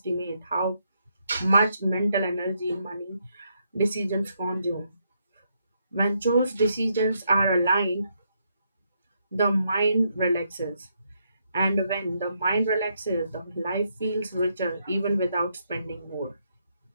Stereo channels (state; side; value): inverted; both; correlation -0.77